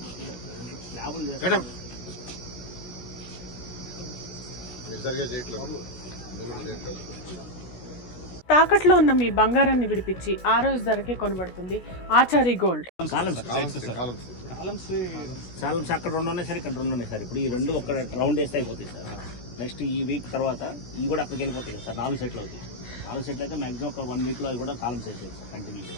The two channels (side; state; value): right; late; 16 ms